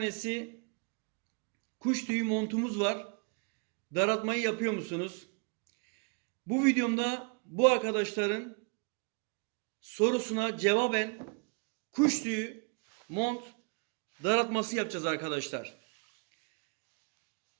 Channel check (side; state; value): left; quieter; 37.8 dB